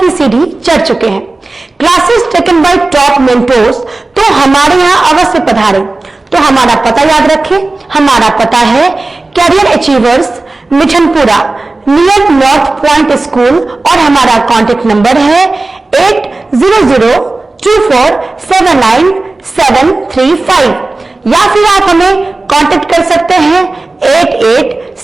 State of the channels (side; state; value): left; quieter; 3.2 dB